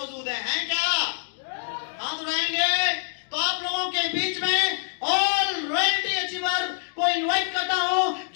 हैं क्या? हाथ उठाएंगे तो आप लोगों के बीच में ऑल रॉयल्टी अचीवर को इनवाइट करता हूं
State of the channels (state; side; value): silent; right; digital silence